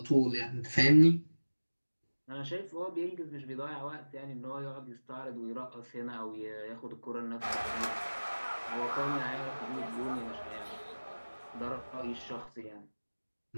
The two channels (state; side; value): inverted; both; correlation -1.00